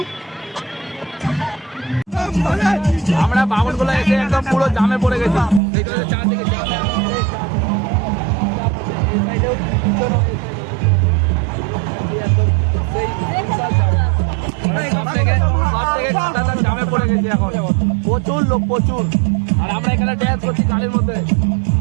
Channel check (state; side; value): drops out; left; at 5.6 s